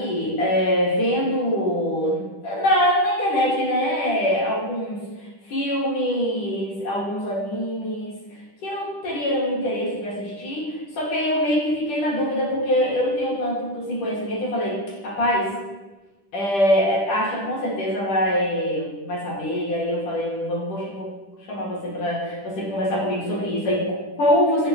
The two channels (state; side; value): late; right; 10 ms